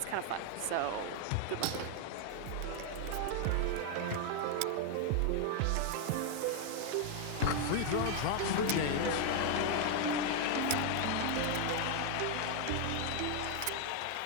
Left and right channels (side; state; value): both; different; correlation 0.00